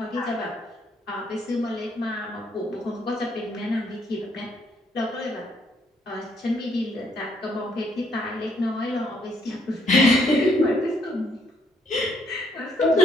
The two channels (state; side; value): normal; both; correlation 0.70